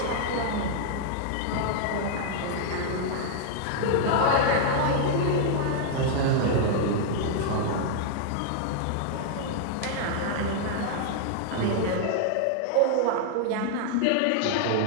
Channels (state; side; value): different; both; correlation -0.01